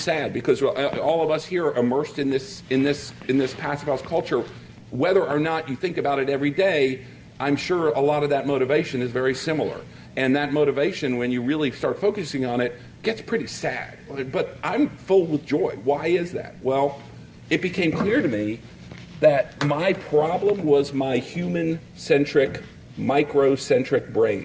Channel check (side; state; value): both; identical; correlation 1.00